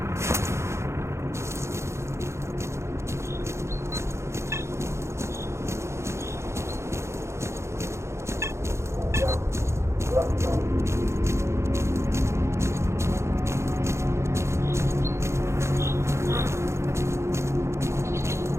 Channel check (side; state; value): left; late; 0.13 ms